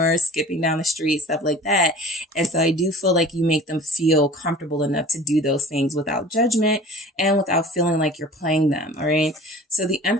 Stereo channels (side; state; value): both; normal; correlation 0.43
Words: skipping down the street, stuff like that. And so I do feel like you make them feel comfortable enough to do those things without judgment and without feeling like you're playing them. All right. So the